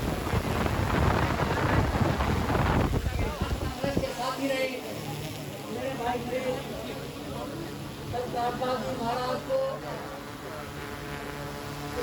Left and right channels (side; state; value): both; identical; correlation 1.00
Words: रामपाल जी महाराज को